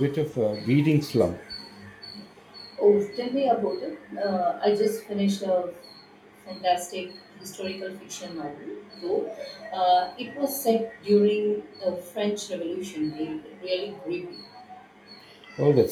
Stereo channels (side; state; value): both; identical; correlation 1.00